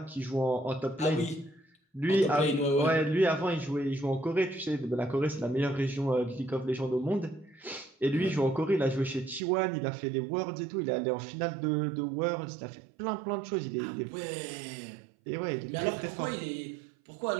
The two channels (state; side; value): drops out; left; at 9.4 s